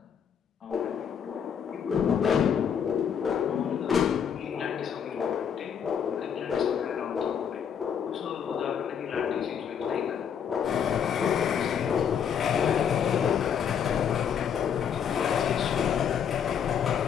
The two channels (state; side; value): quieter; right; 7.9 dB